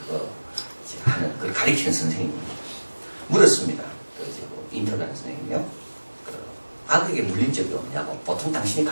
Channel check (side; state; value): both; inverted; correlation -1.00